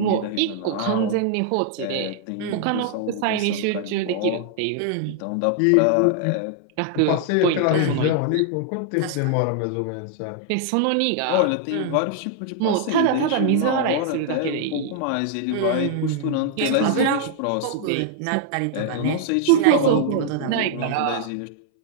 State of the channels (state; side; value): different; both; correlation 0.00